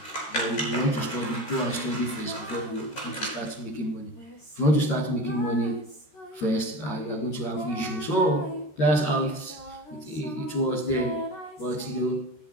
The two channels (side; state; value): right; late; 13 ms